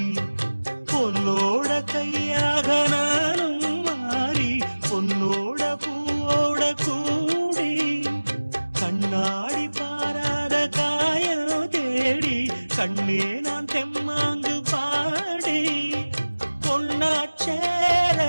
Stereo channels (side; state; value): both; inverted; correlation -1.00